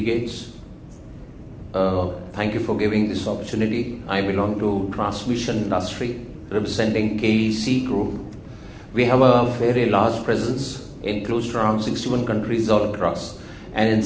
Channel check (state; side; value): identical; both; correlation 1.00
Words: thank you for giving this opportunity. I belong to transmission industry representing KEC Group. We have a very large presence in close to around 61 countries all across. And in